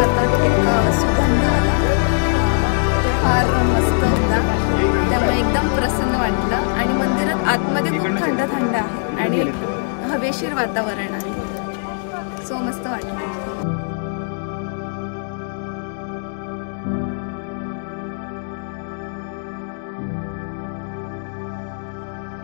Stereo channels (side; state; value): right; silent; digital silence